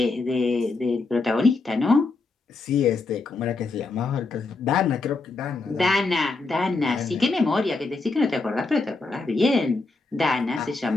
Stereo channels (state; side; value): quieter; right; 3.7 dB